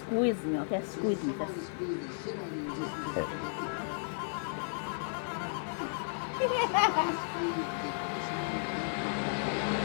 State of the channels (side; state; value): right; silent; digital silence